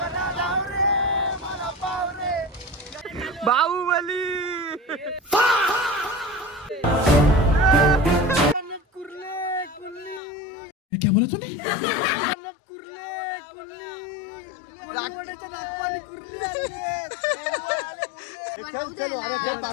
बाहुबली. क्या बोला तूने?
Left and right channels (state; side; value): drops out; right; at 10.2 s